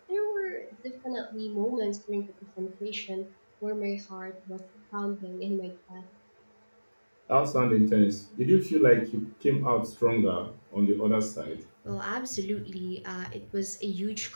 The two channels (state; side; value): inverted; both; correlation -1.00